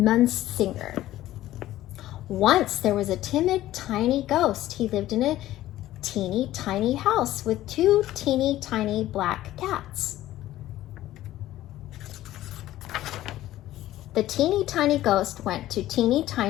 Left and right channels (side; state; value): right; quieter; 14.6 dB